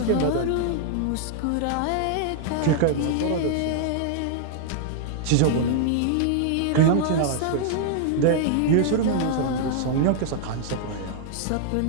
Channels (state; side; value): different; both; correlation -0.01